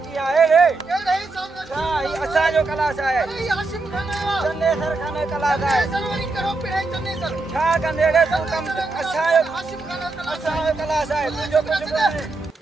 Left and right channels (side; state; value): left; quieter; 3.4 dB